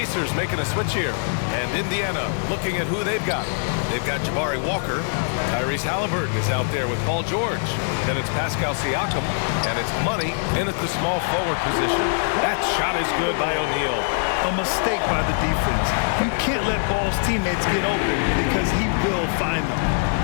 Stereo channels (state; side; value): silent; right; digital silence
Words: making a switch here. And Indiana looking at who they've got. They've got Jabari Walker. Tyrese Halliburton is out there with Paul George. Then it's Pascal Siakam. And it's Money in at the small forward position. That shot is good by O'Neal. A mistake by the defense. You can't let Ball's teammates get open because he will find them.